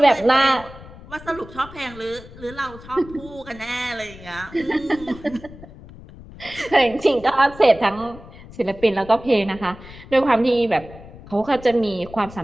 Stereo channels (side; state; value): left; noise; rumble, 18 dB below the sound